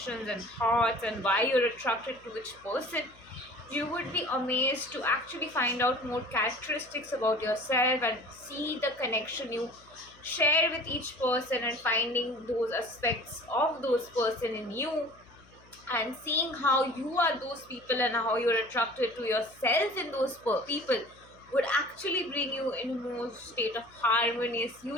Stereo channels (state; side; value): noise; left; hum, 26 dB below the sound